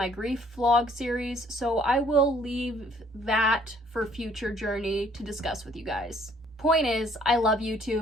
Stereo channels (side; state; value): both; normal; correlation 0.61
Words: grief vlog series, so I will leave that for future Journey to discuss with you guys. Point is, I love